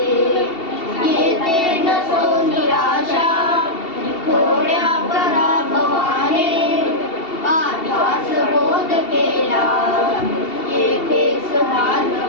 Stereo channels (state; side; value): late; right; 2.7 ms